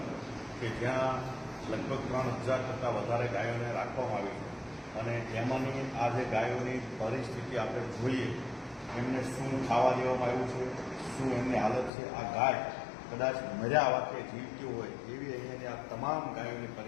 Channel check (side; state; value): right; drops out; at 11.9 s